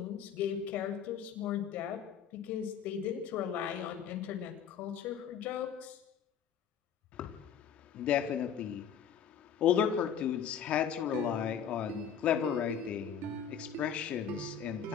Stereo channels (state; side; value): quieter; right; 8.0 dB